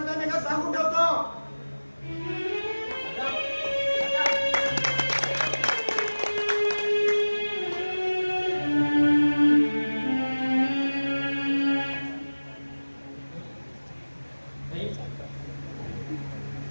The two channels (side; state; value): both; inverted; correlation -1.00